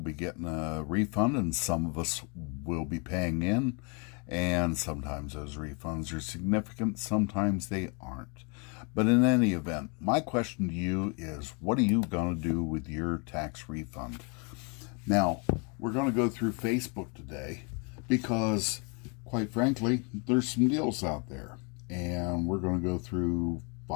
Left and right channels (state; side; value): quieter; right; 34.3 dB